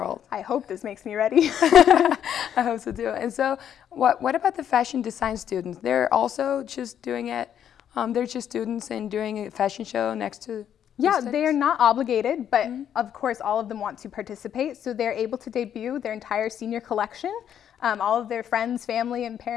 I hope this makes me ready. I hope so too. And so what about the fashion design students? They're also just doing it, they're just students and doing a fashion show next to Yeah, they are not obligated, but of course all of them want to participate. So they're able to debut their entire senior collection. All of their friends, family, and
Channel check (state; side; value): quieter; right; 9.5 dB